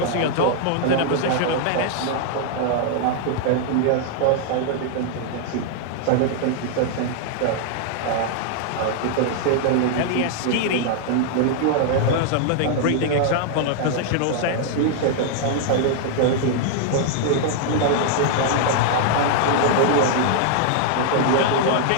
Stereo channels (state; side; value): different; both; correlation 0.00